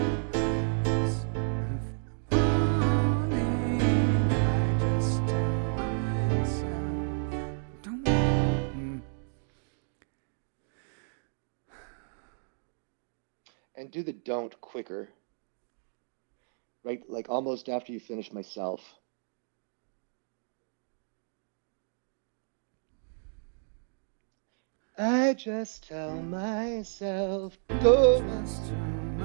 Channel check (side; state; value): left; silent; digital silence